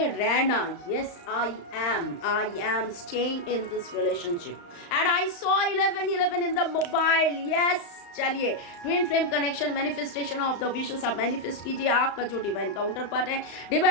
रहना। Yes, I am staying in this relationship and I saw 11 in the mobile. Yes, चलिए, twin flame connection, manifestation of the wishes आप मैनिफेस्ट कीजिए। आपका जो डिवाइन काउंटर पार्ट है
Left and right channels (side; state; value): right; late; 35 ms